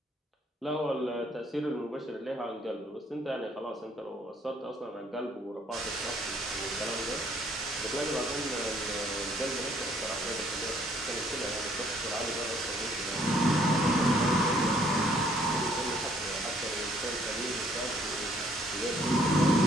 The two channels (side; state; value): both; normal; correlation 0.63